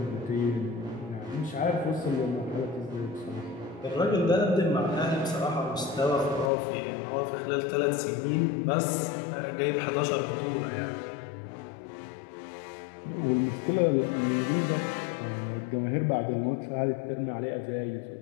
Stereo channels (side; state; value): right; drops out; at 6.5 s